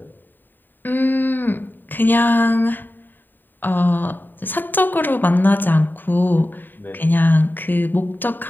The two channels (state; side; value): late; right; 0.092 ms